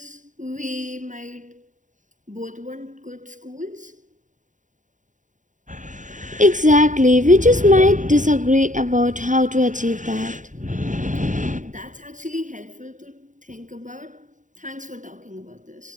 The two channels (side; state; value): left; late; 0.36 ms